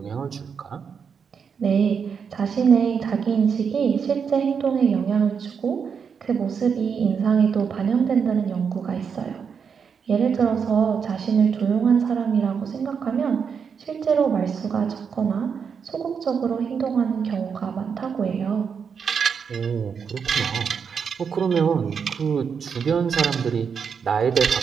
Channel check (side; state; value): left; quieter; 6.5 dB